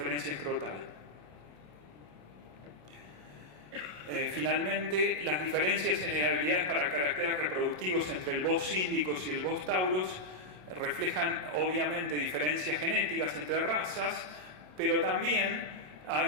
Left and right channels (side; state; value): left; late; 27 ms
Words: escrotal. Finalmente, las diferencias en heredabilidades para caracteres reproductivos entre el Bos síndicos y el Bos tauros reflejan obviamente diferencias genéticas entre razas, pero también